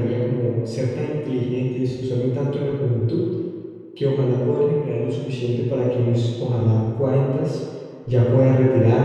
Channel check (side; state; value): both; identical; correlation 1.00